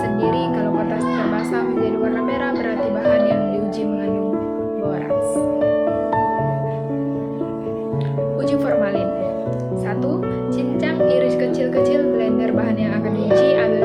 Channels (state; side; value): identical; both; correlation 1.00